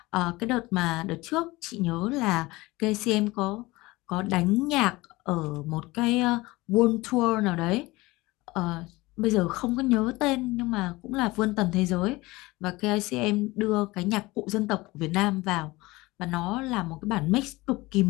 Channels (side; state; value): right; quieter; 21.1 dB